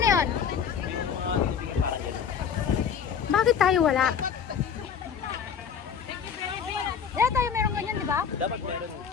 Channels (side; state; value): right; quieter; 7.2 dB